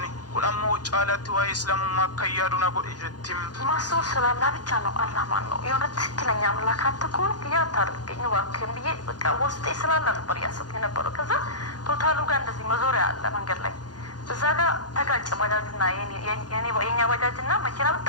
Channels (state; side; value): late; right; 0.69 ms